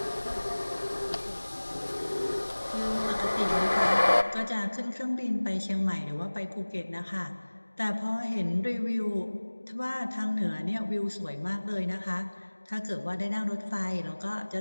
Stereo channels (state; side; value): inverted; both; correlation -1.00